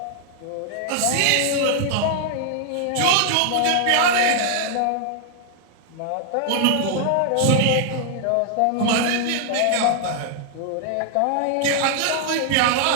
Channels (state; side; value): different; both; correlation 0.00